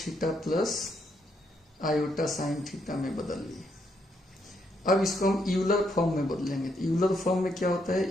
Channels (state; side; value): normal; both; correlation 0.76